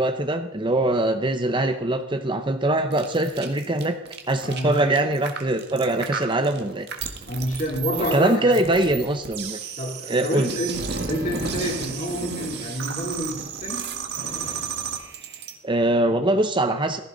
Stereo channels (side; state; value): both; normal; correlation 0.47